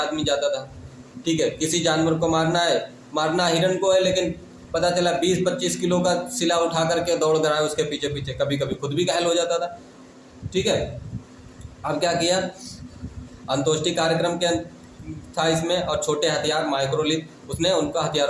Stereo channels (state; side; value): identical; both; correlation 1.00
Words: जाता था। ठीक है, किसी जानवर को मारना है, मारना हिरन को है, लेकिन पता चला 20-25 किलो का सिला उठा करके दौड़ रहा है उसके पीछे पीछे, कभी कभी खुद भी घायल हो जाता था। ठीक है, अब क्या किया? अंत्योष्टि कार्यक्रम के था इसमें, और छोटे हथियार माइक्रोलिथ, उसने उनका